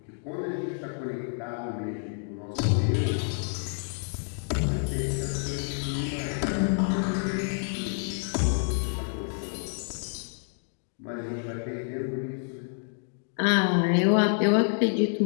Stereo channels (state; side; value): silent; right; 59 dB below the other